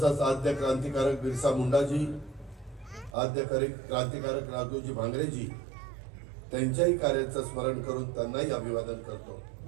आद्य क्रांतिकारक बिरसा मुंडाजी, आद्य क्रांतिकारक राघोजी भांगरेजी, त्यांच्याही कार्याचं स्मरण करून त्यांनाही अभिवादन करतो.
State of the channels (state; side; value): drops out; left; at 3.2 s